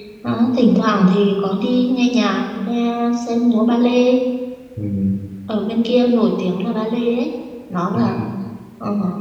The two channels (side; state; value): both; identical; correlation 1.00